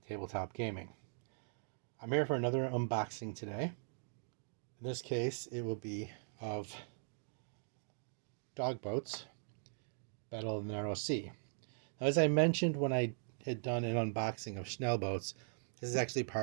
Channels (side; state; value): left; silent; digital silence